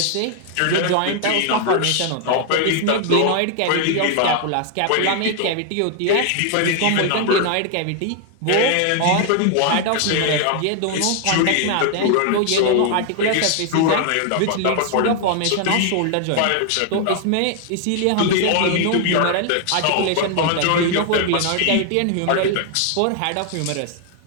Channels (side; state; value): both; different; correlation 0.00